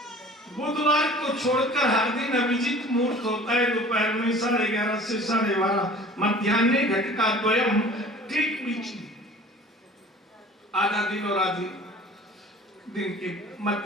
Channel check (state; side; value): normal; both; correlation 0.45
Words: बुधवार को छोड़कर हर दिन अभिजीत मुहूर्त होता है, दोपहर में 11:30 से 12:30, मध्याह्न घटिका द्वयम, ठीक बीच में आधा दिन और आधी दिन के